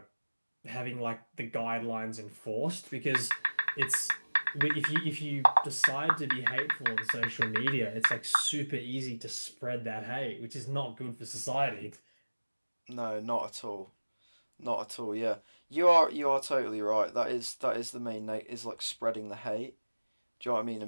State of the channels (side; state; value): both; inverted; correlation -1.00